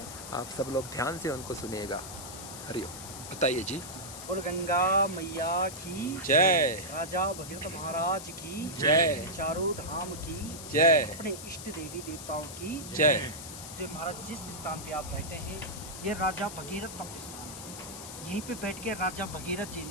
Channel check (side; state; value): left; noise; hiss, 11 dB below the sound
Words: आप सब लोग ध्यान से उनको सुनिएगा। हरिओम। बताइए जी। और गंगा मैया की जय। राजा भगीरथ महाराज की जय। चारों धाम की जय। अपने इष्ट देवी देवताओं की जय। जो महाराज जिस स्थान पे आप बैठे हैं ये राजा भगीरथ तप स्थान है। यहीं पे बैठ के राजा भगीरथ जी